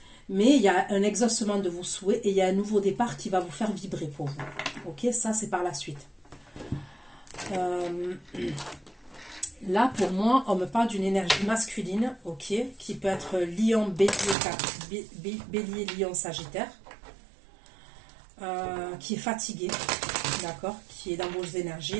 Mais il y a un exaucement de vos souhaits et il y a un nouveau départ qui va vous faire vibrer pour vous. Ok, ça c'est par la suite. Là, pour moi, on me parle d'une énergie masculine, ok, qui peut être lion, bélier, lion, sagittaire, qui est fatigué, d'accord, qui est dans vos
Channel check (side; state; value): left; drops out; at 14.4 s